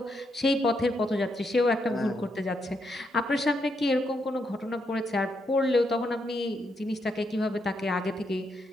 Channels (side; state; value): both; normal; correlation 0.79